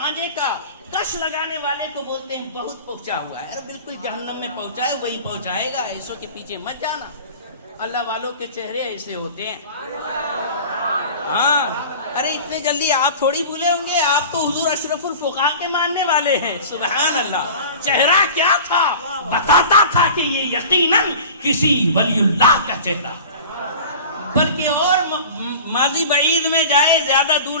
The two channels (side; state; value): both; inverted; correlation -0.39